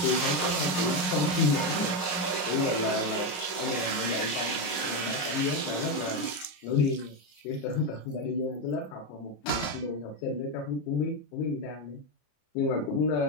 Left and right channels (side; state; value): right; late; 34 ms